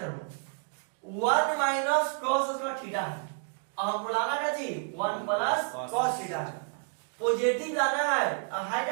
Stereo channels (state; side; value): silent; left; 58 dB below the other